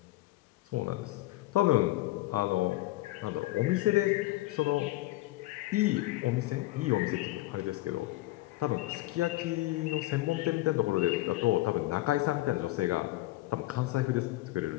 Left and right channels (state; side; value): quieter; right; 17.9 dB